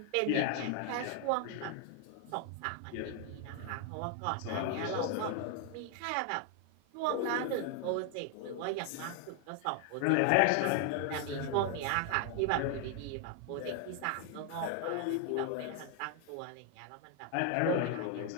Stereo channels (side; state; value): both; different; correlation 0.00